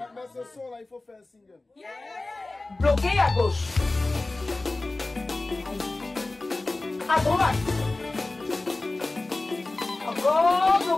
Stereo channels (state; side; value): quieter; right; 3.0 dB